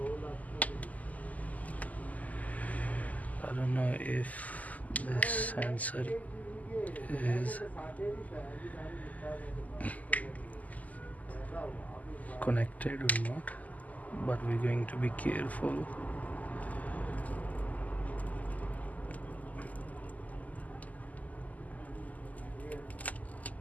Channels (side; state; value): right; late; 0.076 ms